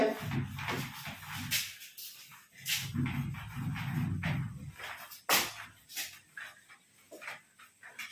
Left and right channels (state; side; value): identical; both; correlation 1.00